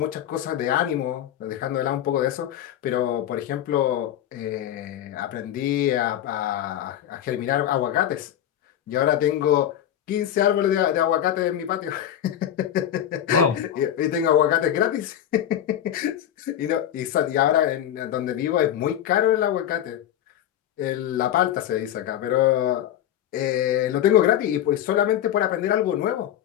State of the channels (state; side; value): quieter; right; 11.0 dB